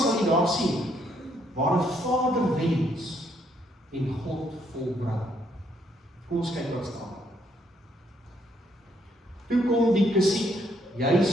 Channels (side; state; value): both; normal; correlation 0.71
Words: jy daar sien, waar 'n vader wens en God volbring. Kom ons kyk wat staan. Toe kom die Kesiet